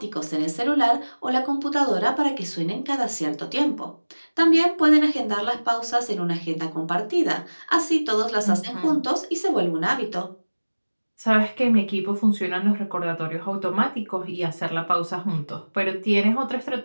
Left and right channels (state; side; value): inverted; both; correlation -1.00